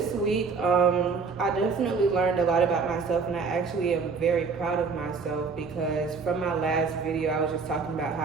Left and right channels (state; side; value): quieter; left; 5.0 dB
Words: week, I definitely learned a lot about myself, and I actually am very proud of myself because from my last video, I was just talking about how